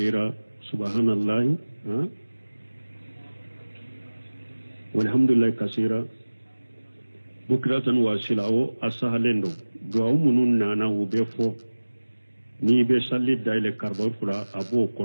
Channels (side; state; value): both; inverted; correlation -1.00